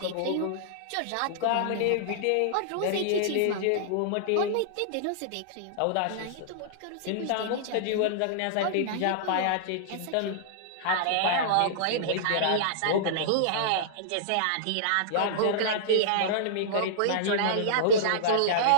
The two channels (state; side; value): different; both; correlation -0.02